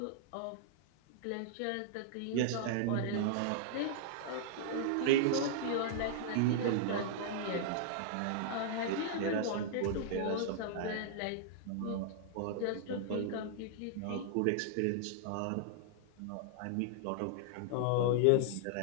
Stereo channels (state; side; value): different; both; correlation -0.01